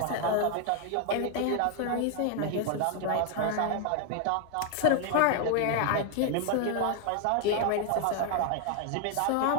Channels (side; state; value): both; different; correlation 0.01